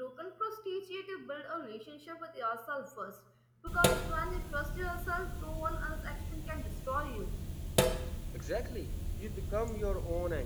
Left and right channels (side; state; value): both; identical; correlation 1.00